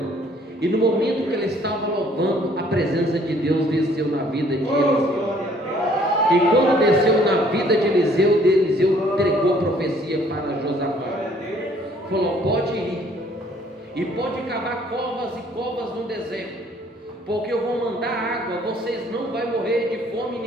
E no momento que ele estava louvando, a presença de Deus desceu na vida de Eliseu. E quando desceu na vida de Eliseu entregou a profecia para Josafá. Falou: pode ir, e pode cavar covas e covas no deserto, porque eu vou mandar água, vocês não vão morrer de fome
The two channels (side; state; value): both; normal; correlation 0.60